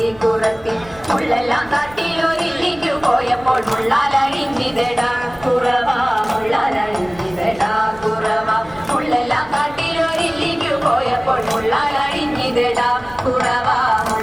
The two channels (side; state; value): right; noise; rumble, 23 dB below the sound